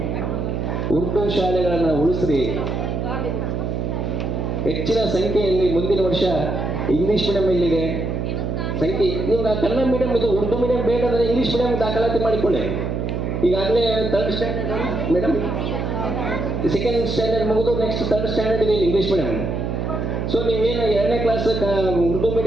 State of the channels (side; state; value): right; noise; hum, 2 dB below the sound